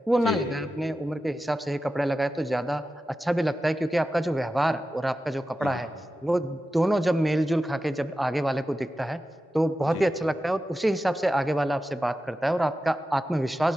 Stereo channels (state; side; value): normal; both; correlation 0.92